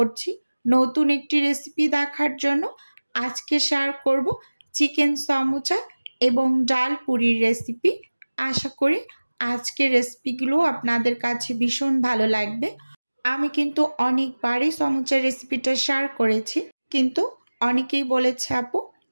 নতুন একটি রেসিপি দেখার জন্য। আজকে শেয়ার করব চিকেন সমুচা এবং ডাল পুরির রেসিপি। আশা করি আজকের রেসিপিগুলো আপনাদের কাছে ভীষণ ভালো লাগবে। আমি কিন্তু অনেকবারই সমুচার রেসিপিটা শেয়ার করেছি, কিন্তু অনেকেই বলেছে আপু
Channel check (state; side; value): inverted; both; correlation -1.00